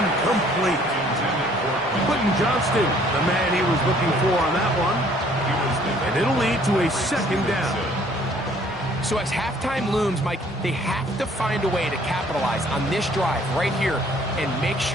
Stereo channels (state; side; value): normal; both; correlation 0.59